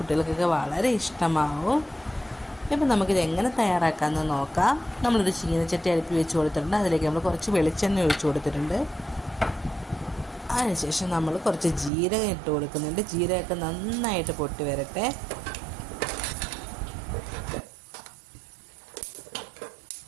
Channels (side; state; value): left; drops out; at 11.9 s